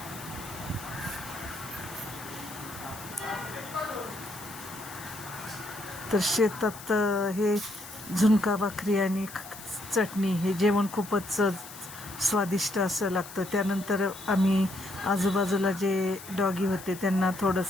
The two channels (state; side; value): noise; left; hiss, 15 dB below the sound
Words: तर शेतात हे झुणका भाकरी आणि चटणी हे जेवण खूपच स्वादिष्ट असं लागतं. त्यानंतर आम्ही आजूबाजूला जे डॉगी होते त्यांना